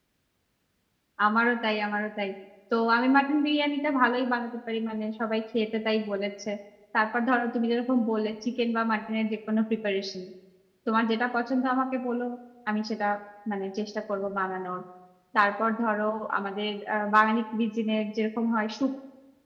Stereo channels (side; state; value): both; identical; correlation 1.00